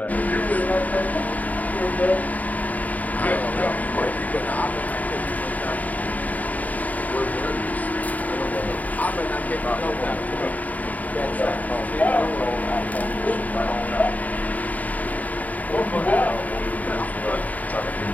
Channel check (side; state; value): right; late; 0.075 ms